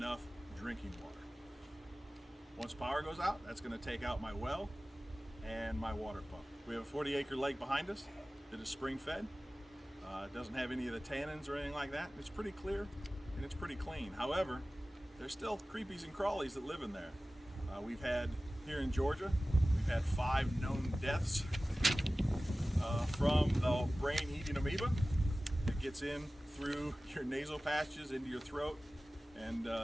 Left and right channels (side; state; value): both; normal; correlation 0.97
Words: drinking water. Once power goes out, that's going to take out my well and my water pump. We have a 40-acre lake behind us that is spring fed. It doesn't have any of the tannins or anything like that. It's pretty clear and it's pretty clean. However, there's still creepies and crawlies that live in there. We've had, here in Georgia, we've had 5 known deaths from the brain-eating amoeba that gets in through your nasal passages into your throat and